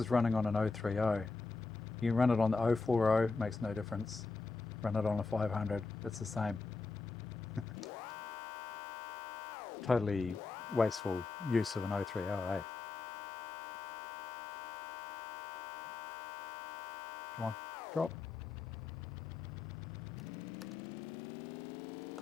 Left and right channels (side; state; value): right; quieter; 4.1 dB